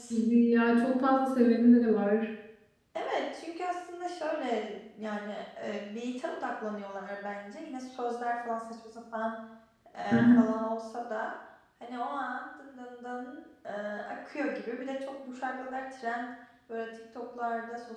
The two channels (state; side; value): identical; both; correlation 1.00